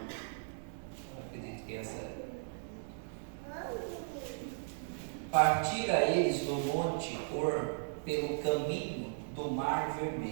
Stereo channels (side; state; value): left; silent; digital silence